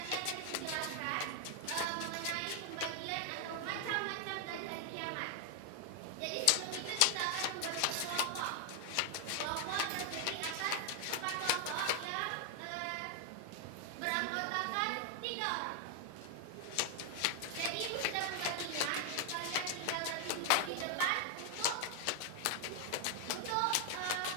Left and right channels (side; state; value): both; different; correlation 0.00